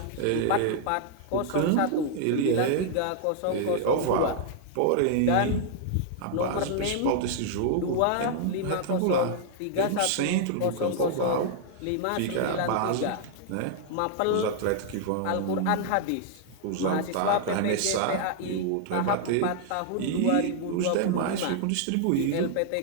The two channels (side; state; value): both; different; correlation -0.01